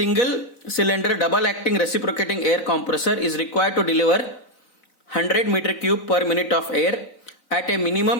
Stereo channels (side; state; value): right; late; 3.9 ms